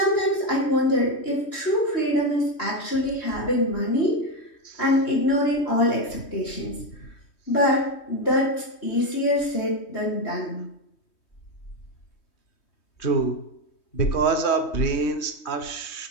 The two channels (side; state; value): right; late; 3.2 ms